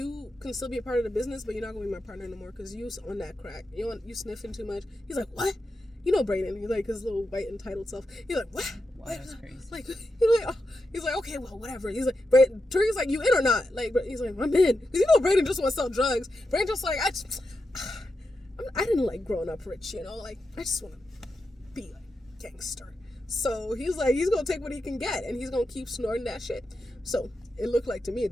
can still be a part of the business, but you're not gonna be my partner no more because you on that crack. You sniffing too much. He's like, what? You know Brayden. He's like his little white entitled self. He's like, what? Wow, that's crazy. Like he's like, okay, well, whatever. He's like, Tariq's like, you in or not? Like, he's like, I'm in. Because you know Brayden just want to sell drugs. Brayden just like, I didn't like growing up rich, like I just want to be like gangster. So he's like, he's gonna take what he can get and he's gonna keep snorting that shit. So it looked like to me, it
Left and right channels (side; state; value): both; normal; correlation 0.88